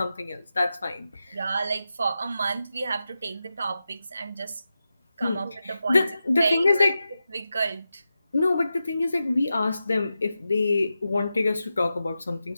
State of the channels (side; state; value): both; inverted; correlation -0.91